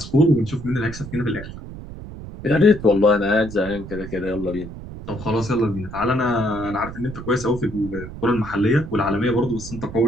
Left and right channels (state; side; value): noise; right; rumble, 12 dB below the sound